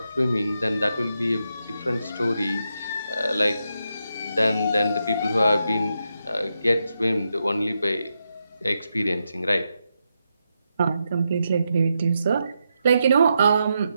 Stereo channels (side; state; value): both; inverted; correlation -0.85